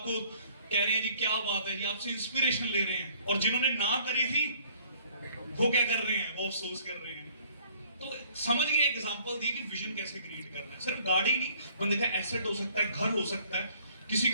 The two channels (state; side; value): inverted; both; correlation -0.59